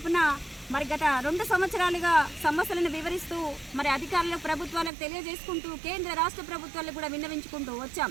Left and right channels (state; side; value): drops out; left; at 4.9 s